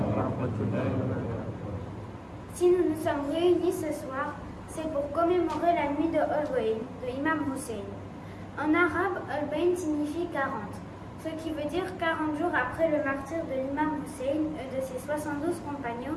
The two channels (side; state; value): both; identical; correlation 1.00